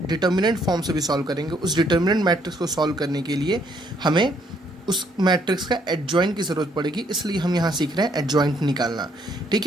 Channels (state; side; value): normal; both; correlation 0.69